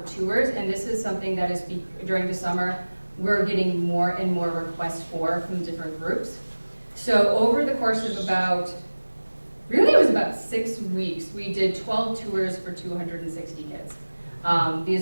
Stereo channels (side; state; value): both; inverted; correlation -1.00